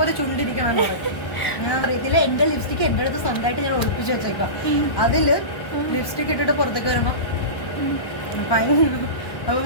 ചുണ്ടിരിക്കണം. ഞാൻ അറിയത്തില്ല, എന്റെ ലിപ്സ്റ്റിക് എന്റെ അടുത്ത് സ്വന്തമായിട്ട് ഞാൻ ഒളിപ്പിച്ച് വെച്ചേക്കാം. അതില് ലിപ്സ്റ്റിക് ഇട്ടിട്ട് പുറത്തേക്ക് വരുമ്പോ അപ്പൊ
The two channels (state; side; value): late; right; 1.1 ms